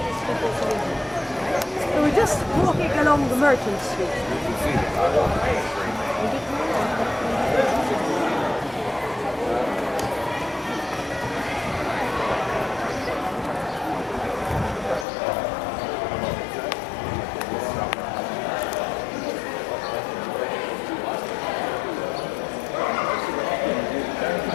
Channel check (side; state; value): right; drops out; at 15.1 s